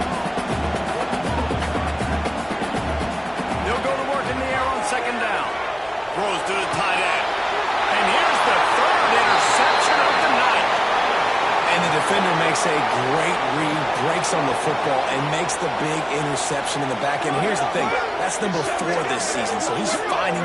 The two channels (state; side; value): identical; both; correlation 1.00